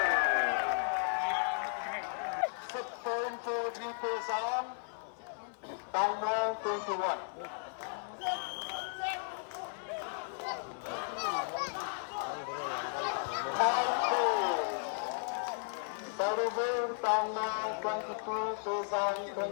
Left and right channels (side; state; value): right; silent; 54 dB below the other